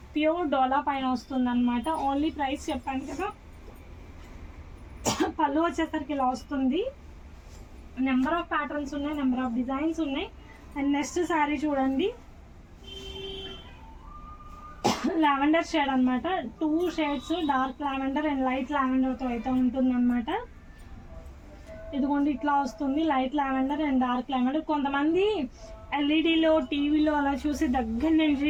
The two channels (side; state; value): both; identical; correlation 1.00